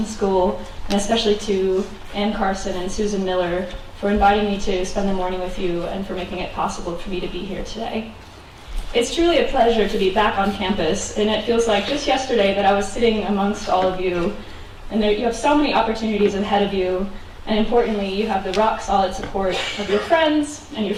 School, and especially to Ann Carson and Susan Miller for inviting me to spend the morning with you and for making it possible for me to be here today. It's truly a pleasure to be back on campus, and it feels like just yesterday that I was sitting amongst all of you, and you have so many opportunities ahead of you, and importantly, you have the rock-solid support of your friends and your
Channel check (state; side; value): identical; both; correlation 1.00